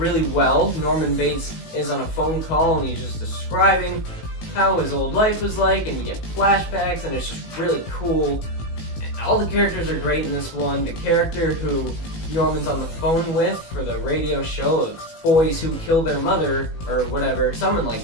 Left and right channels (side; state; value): right; late; 18 ms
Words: well. Norman Bates is on a phone call and he's just describing how his old life was like, and you get flashbacks, and it's just really cool. And all the characters are great in this one. The character who Norman's on the phone with for the radio show of boys who kill their mother, or whatever, something like